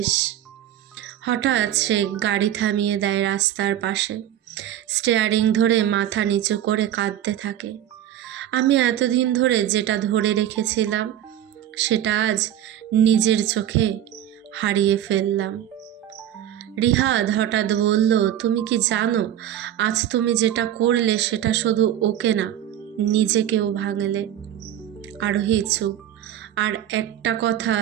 হঠাৎ সে গাড়ি থামিয়ে দেয় রাস্তার পাশে, স্টিয়ারিং ধরে মাথা নিচু করে কাঁদতে থাকে। আমি এতদিন ধরে যেটা ধরে রেখেছিলাম সেটা আজ নিজের চোখে হারিয়ে ফেললাম। রিহাদ হঠাৎ বলল, তুমি কি জানো আজ তুমি যেটা করলে সেটা শুধু ওকে না, নিজেকেও ভাঙলে। আরোহী চুপ। আর একটা কথা,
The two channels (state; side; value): quieter; left; 11.4 dB